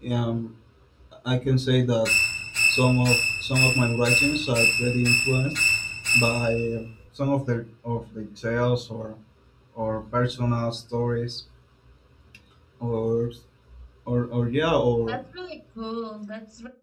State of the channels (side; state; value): both; identical; correlation 1.00